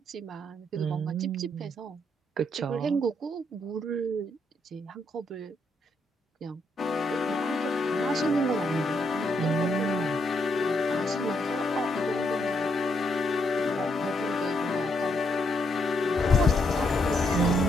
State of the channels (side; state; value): both; normal; correlation 0.76